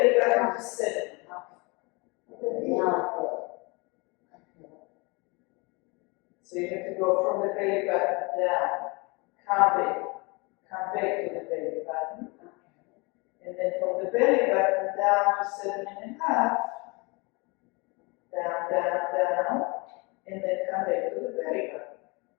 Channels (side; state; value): right; quieter; 28.1 dB